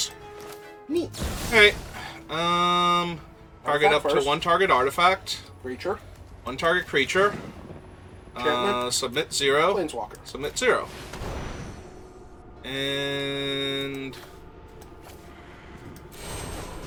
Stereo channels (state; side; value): identical; both; correlation 1.00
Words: Neat. Alright. Target up Artifact to first. 1 target artifact. Creature. 1 target creature. Enchantment. Submit 0. Planeswalker. Submit 0. And...